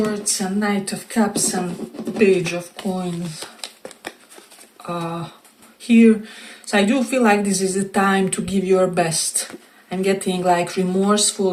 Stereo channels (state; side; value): identical; both; correlation 1.00